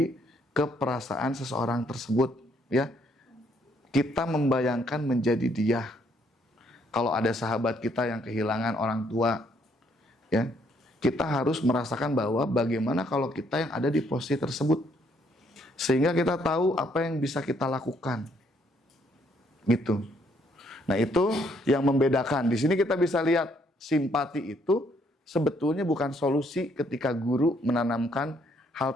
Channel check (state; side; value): normal; both; correlation 0.69